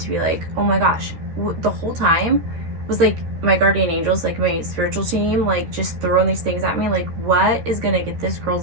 be like, oh my gosh, the whole time was like my guardian angels, like my spiritual team, like just throwing these things at me. Like, what is going to get this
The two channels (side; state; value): left; late; 13 ms